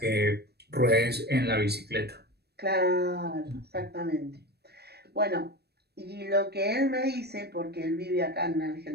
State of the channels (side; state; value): left; late; 0.47 ms